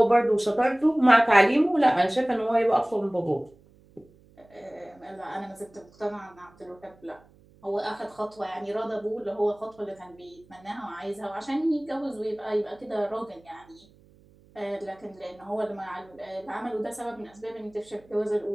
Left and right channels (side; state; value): right; noise; hum, 28 dB below the sound